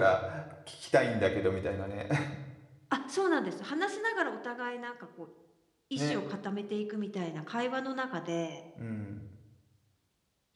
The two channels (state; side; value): identical; both; correlation 1.00